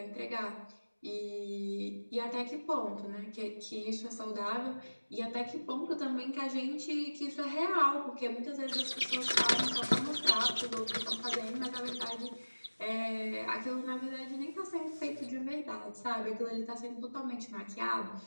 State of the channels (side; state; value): both; inverted; correlation -1.00